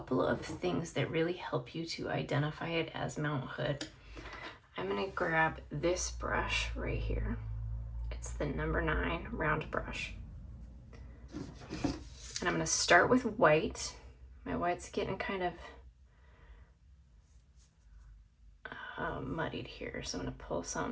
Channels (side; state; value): both; identical; correlation 1.00